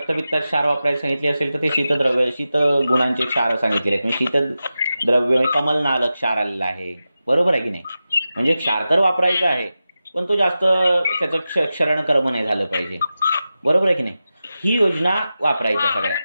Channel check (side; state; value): both; inverted; correlation -0.93